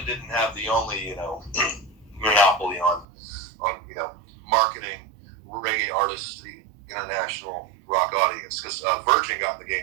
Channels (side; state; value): left; drops out; at 3.1 s